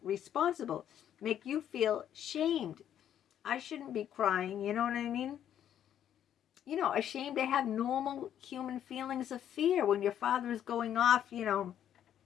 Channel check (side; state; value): right; quieter; 10.2 dB